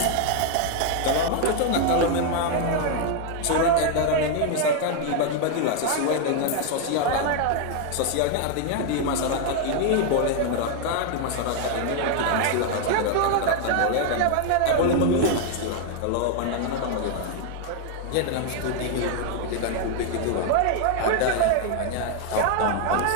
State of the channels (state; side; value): different; both; correlation 0.00